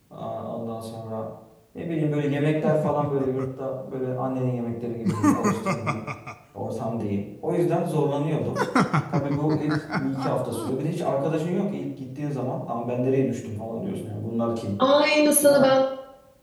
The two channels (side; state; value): both; identical; correlation 1.00